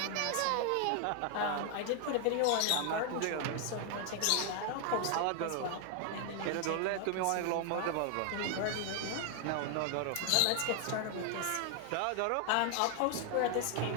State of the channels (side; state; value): both; different; correlation 0.00